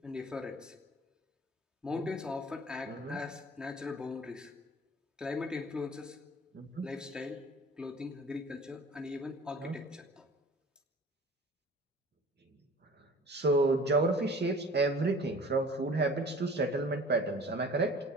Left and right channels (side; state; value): both; normal; correlation 0.45